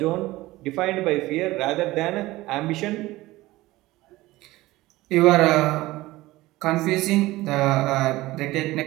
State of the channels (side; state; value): left; quieter; 18.4 dB